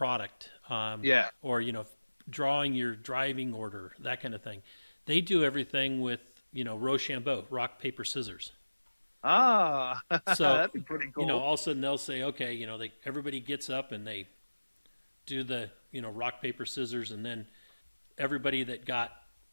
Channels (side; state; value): both; inverted; correlation -1.00